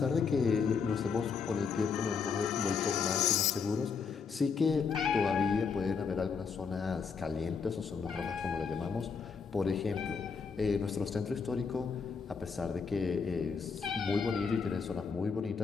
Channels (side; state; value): right; quieter; 5.6 dB